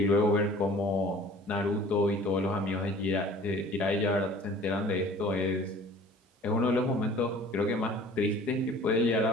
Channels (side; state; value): both; normal; correlation 0.48